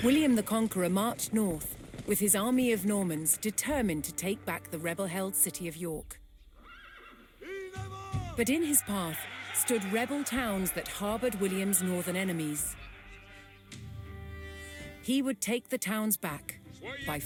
William the Conqueror marched north, with his army of Normans determined to take back the rebel-held city of York. But in his path stood rebel towns that harbored William's northern enemies. He would take the towns back by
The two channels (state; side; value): identical; both; correlation 1.00